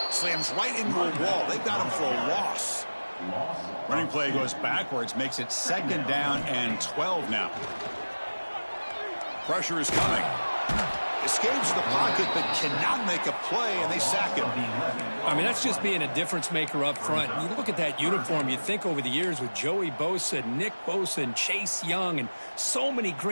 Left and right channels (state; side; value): inverted; both; correlation -1.00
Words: Slams right into a wall. They've got him for a loss. Running play goes backwards, makes it second down and 12 now. Pressure is coming. Escapes the pocket, but cannot make a play, and they sack him. I mean, that's just being a difference maker up front. You look at that uniform, you think over the years with Joey Bosa, Nick Bosa, and Chase Young, and so many